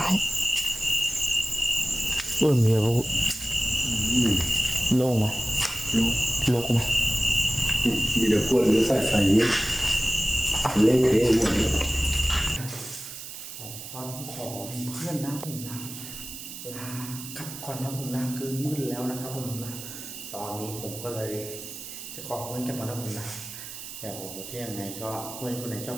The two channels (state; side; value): noise; right; hiss, 11 dB below the sound